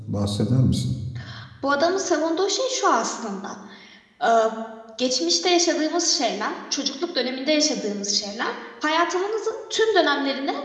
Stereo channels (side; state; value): both; identical; correlation 1.00